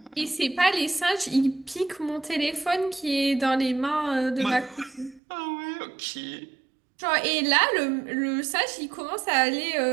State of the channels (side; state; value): left; drops out; at 5.2 s